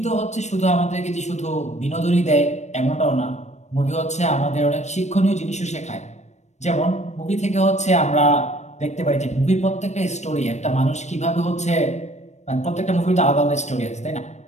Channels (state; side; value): late; right; 0.33 ms